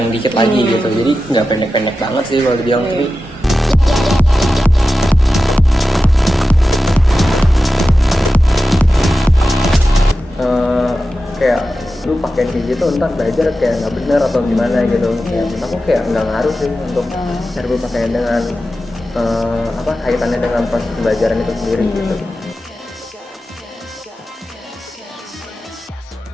dikit lagi gitu, jadi nggak pendek-pendek banget sih kalau dibilang. Tapi kayak lu pakai kayak gitu ntar belajar kayak nggak bener atau gimana gitu. Kayak menurut aku kayak nggak ngaruh sih untuk cara berpakaian dengan kaitannya dengan proses pembelajaran itu sendiri gitu.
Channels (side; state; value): both; normal; correlation 0.92